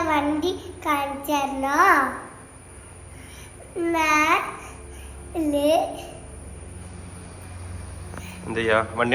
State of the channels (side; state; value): both; identical; correlation 1.00